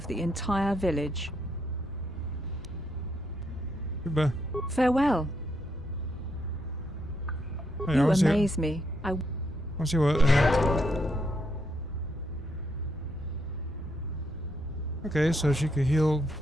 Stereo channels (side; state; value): both; normal; correlation 0.77